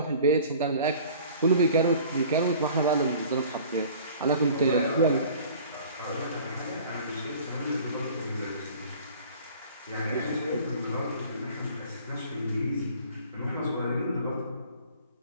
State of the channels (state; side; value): inverted; both; correlation -0.47